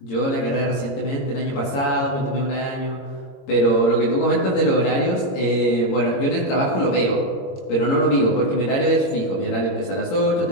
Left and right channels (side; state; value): right; late; 22 ms